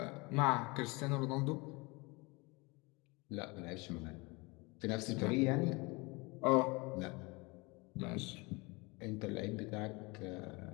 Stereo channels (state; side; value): quieter; right; 26.2 dB